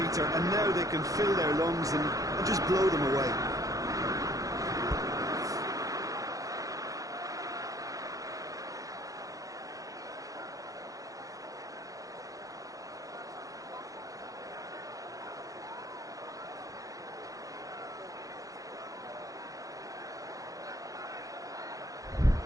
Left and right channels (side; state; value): left; late; 0.17 ms